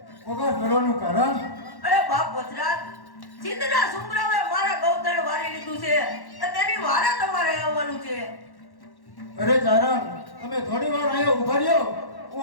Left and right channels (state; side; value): late; right; 1.1 ms